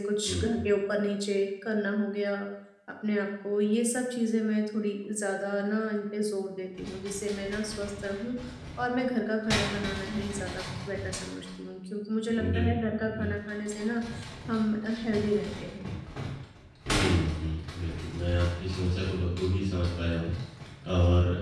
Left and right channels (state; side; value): identical; both; correlation 1.00